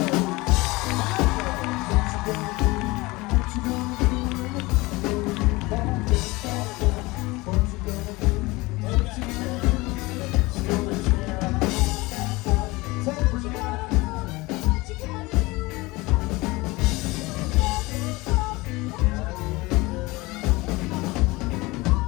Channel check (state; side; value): quieter; right; 22.3 dB